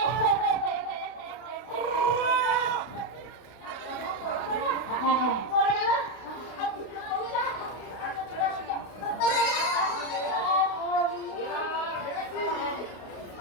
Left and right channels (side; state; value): right; late; 32 ms